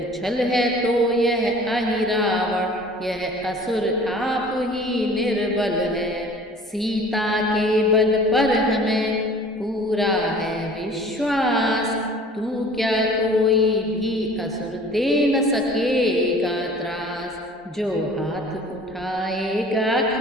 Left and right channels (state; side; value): normal; both; correlation 0.48